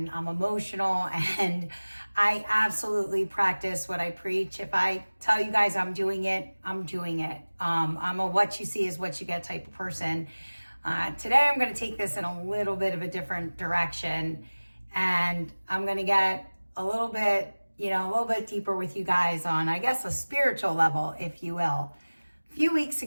I'm emotional, and I absolutely practice what I preach. If I tell you guys I'm doing it, I'm doing it. I'm a what you see is what you get type of person. Today I'm going to take this in a little bit of a different direction, and I'm going to get a little bit deeper with you guys on, I guess, a spiritual level, if you will. A few weeks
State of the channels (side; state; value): both; inverted; correlation -1.00